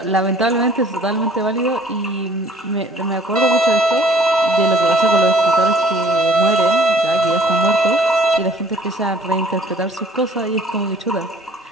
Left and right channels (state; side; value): normal; both; correlation 0.55